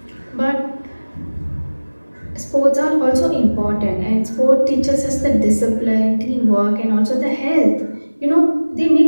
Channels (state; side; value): inverted; both; correlation -1.00